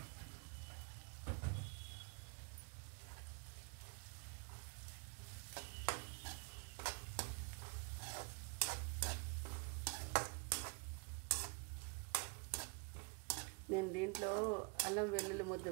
నేను దీంట్లో అల్లం వెల్లుల్లి ముద్ద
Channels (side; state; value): left; quieter; 33.5 dB